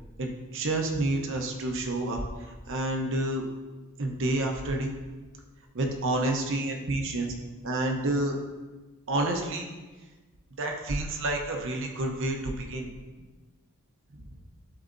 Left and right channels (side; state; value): both; normal; correlation 0.41